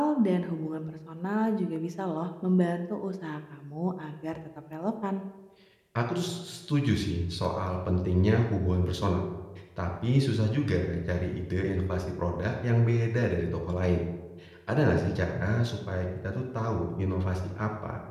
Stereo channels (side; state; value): both; identical; correlation 1.00